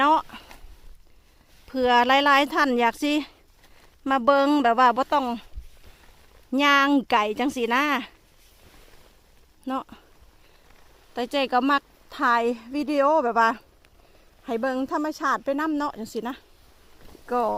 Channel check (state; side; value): identical; both; correlation 1.00